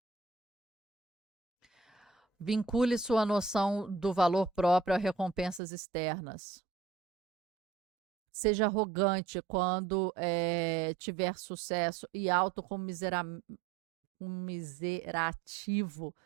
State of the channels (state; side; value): drops out; left; at 5.6 s